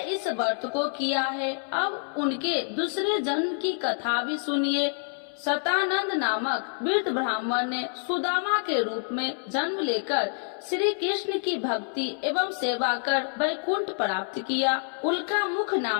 इस व्रत को किया है। अब उनके दूसरे जन्म की कथा भी सुनिए। सतानंद नामक वृद्ध ब्राह्मण ने सुदामा के रूप में जन्म लेकर श्री कृष्ण की भक्ति एवं सेवा कर वैकुंठ प्राप्त किया। उल्का मुख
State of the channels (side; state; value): right; silent; 59 dB below the other